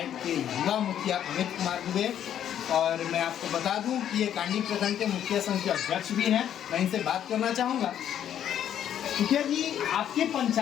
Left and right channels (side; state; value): right; quieter; 10.1 dB